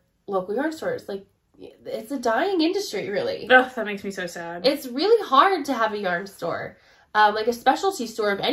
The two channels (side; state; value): both; identical; correlation 1.00